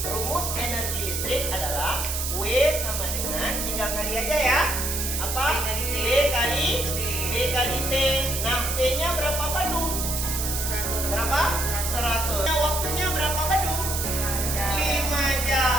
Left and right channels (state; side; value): noise; right; hiss, 2 dB below the sound